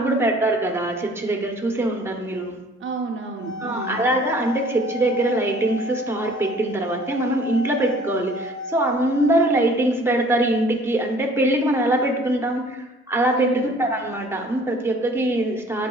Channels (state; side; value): normal; both; correlation 0.53